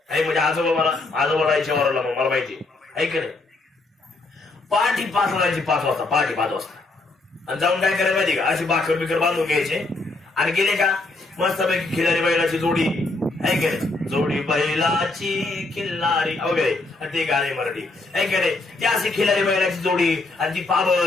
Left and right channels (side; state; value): right; quieter; 3.2 dB